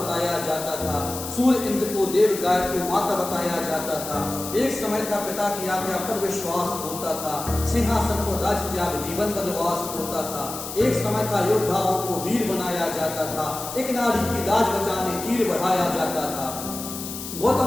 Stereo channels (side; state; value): left; noise; hiss, 9 dB below the sound